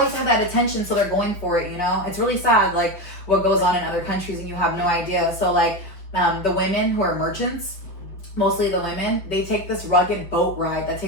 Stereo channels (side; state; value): right; late; 5.6 ms